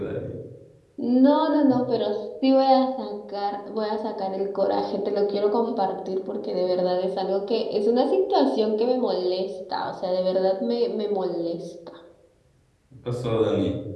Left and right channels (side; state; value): both; identical; correlation 1.00